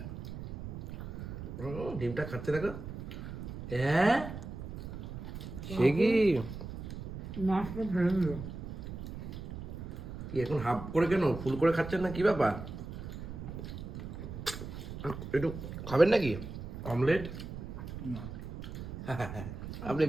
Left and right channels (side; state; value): right; noise; rumble, 8 dB below the sound